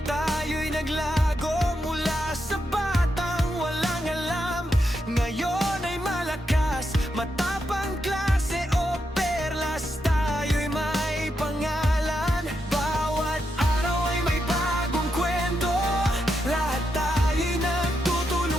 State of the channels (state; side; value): normal; both; correlation 0.84